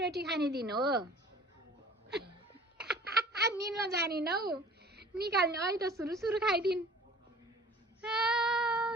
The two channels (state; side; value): normal; both; correlation 0.47